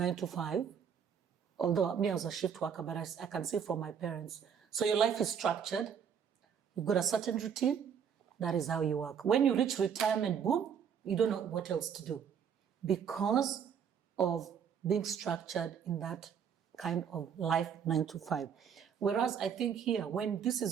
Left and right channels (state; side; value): quieter; left; 7.6 dB